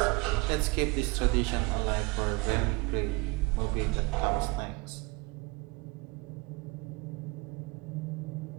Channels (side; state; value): left; quieter; 24.4 dB